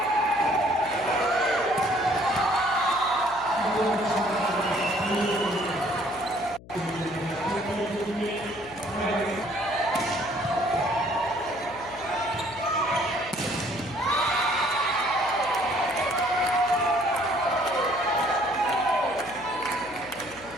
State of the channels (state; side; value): noise; left; hum, 20 dB below the sound